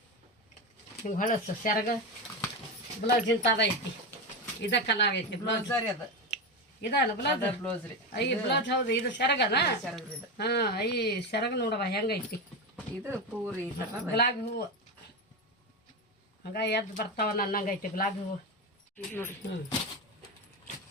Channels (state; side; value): normal; both; correlation 0.16